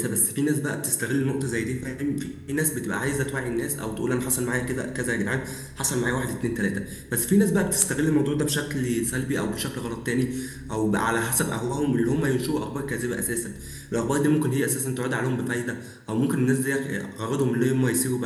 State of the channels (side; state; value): both; identical; correlation 1.00